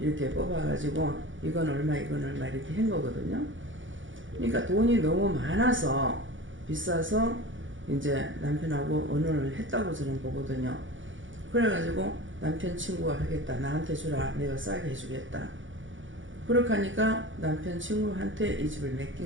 뽑아가지고 이건 얼마 이건 얼마 이렇게 한 거거든요. 그러니까 돈이 너무 많아서 비싸서 이제 남편하고 언혼을 했다고 저는 보거든요. 그래가지고 남편 친구가 하겠다. 나한테 주라. 내가 싸게 해주겠다. 그렇게 하니까 남편 친구한테 이 집을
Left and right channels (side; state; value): left; late; 0.56 ms